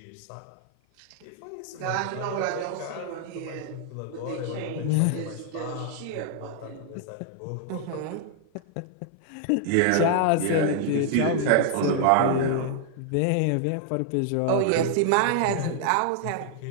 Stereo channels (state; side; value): different; both; correlation -0.01